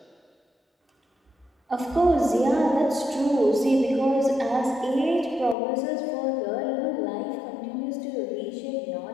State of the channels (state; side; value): drops out; right; at 5.6 s